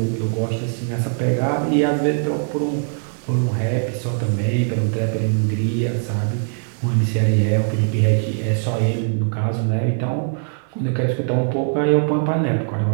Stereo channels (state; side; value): silent; left; digital silence